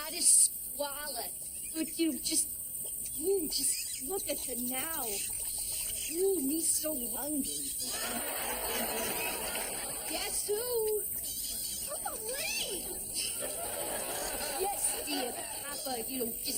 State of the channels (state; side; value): identical; both; correlation 1.00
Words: utter squalor. But just look at her now. Ooh, me so hungry. Guess who? Oh, Lee! Yes, dear Papa,